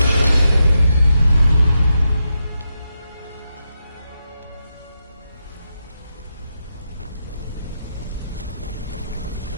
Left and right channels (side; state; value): both; inverted; correlation -0.85